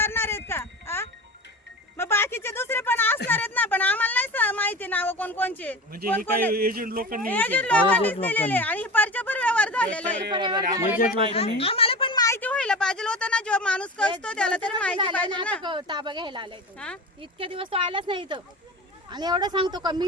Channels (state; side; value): normal; both; correlation 0.30